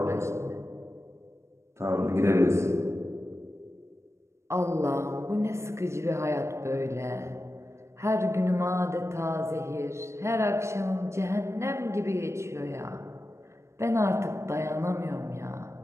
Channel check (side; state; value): left; late; 0.13 ms